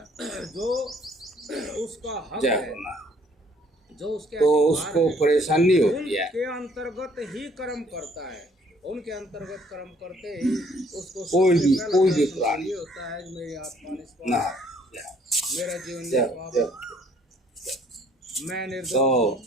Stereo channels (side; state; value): both; normal; correlation 0.61